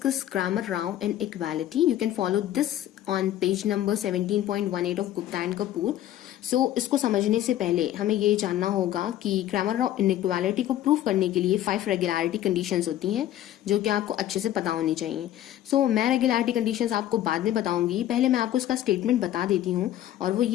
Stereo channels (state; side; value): quieter; right; 12.6 dB